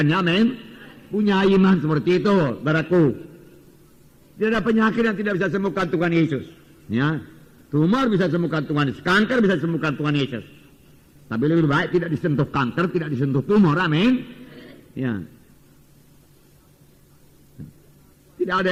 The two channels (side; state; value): both; identical; correlation 1.00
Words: Amin. Punya iman seperti itu, saudaraku. Tidak ada penyakit yang tidak bisa sembuhkan Tuhan Yesus. Ya, tumor bisa sembuhkan Tuhan Yesus, kanker bisa sembuhkan Tuhan Yesus. Tapi lebih baik tidak disentuh kanker, tidak disentuh tumor. Amin. Ya. Tidak